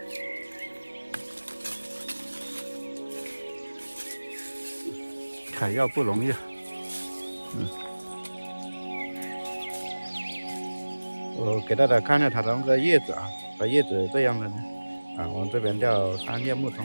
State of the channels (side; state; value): both; inverted; correlation -1.00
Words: 采药不容易啊，我给大家看一下它的那个叶子啊，它叶子这样的呢，啊，我们这边叫三叶木桐，